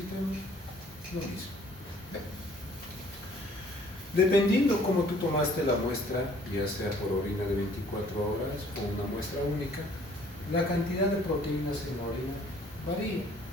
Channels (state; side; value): normal; both; correlation 0.57